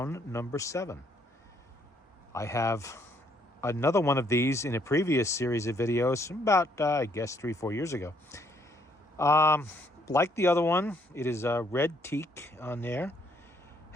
number 7. I have another one of these in a previous series of videos about, I guess, 3-4 years ago. Like the other one, it is a red teak on there.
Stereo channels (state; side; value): normal; both; correlation 0.69